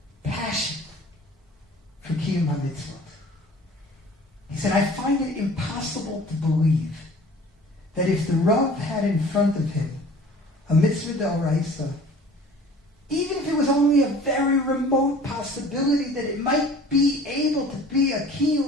passion for Kiyum HaMitzvot. He said, I find it impossible to believe that if the Rav had in front of him a mitzvah d'oraisa, even if it was only a very remote possibility that it might be able to be a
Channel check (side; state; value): both; normal; correlation 0.47